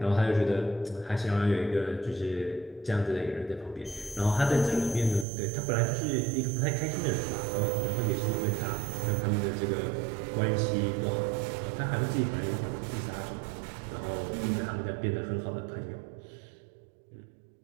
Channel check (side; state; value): left; drops out; at 5.2 s